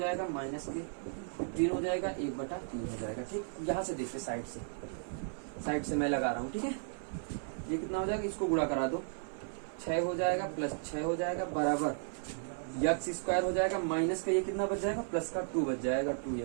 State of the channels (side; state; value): left; silent; 55 dB below the other